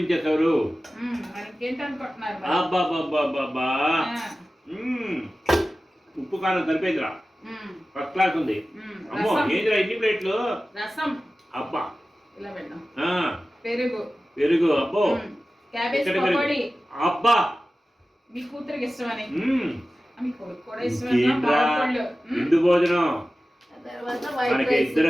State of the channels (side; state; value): both; normal; correlation 0.95